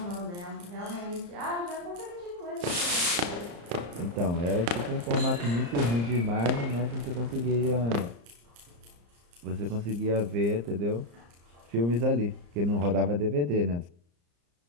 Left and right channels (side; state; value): left; late; 34 ms